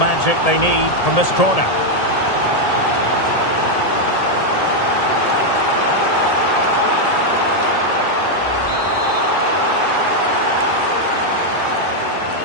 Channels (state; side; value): late; right; 1.8 ms